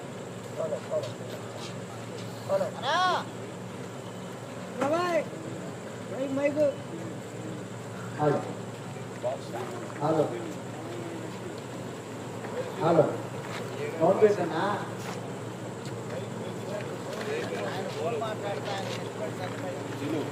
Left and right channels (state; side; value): identical; both; correlation 1.00